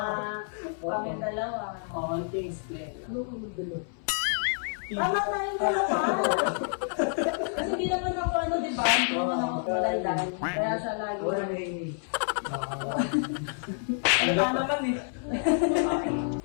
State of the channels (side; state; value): right; silent; 59 dB below the other